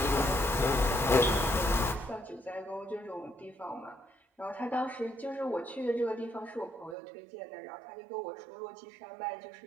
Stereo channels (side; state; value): left; drops out; at 7.0 s